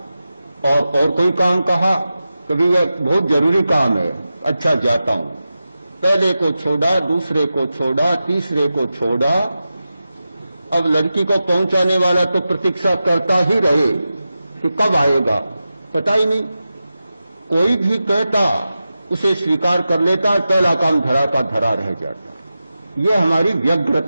और कोई काम कहा, कभी यह बहुत जरूरी काम है। अच्छा, जाता हूं। पहले को छोड़ा, दूसरे को छोड़ा, तीसरे को छोड़ा। अब लड़की को पहुंचाने वाला तो प्रतीक्षा करता ही रहे कि कब आएगा, पता ही नहीं। कोई भी कहता उसे स्वीकार कर लेता, पहला काम धरा का धरा रह जाता। यह हमारी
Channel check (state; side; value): inverted; both; correlation -0.92